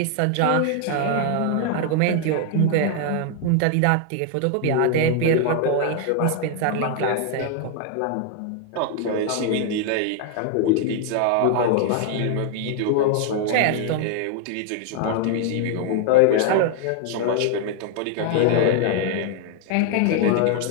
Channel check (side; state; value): both; different; correlation 0.00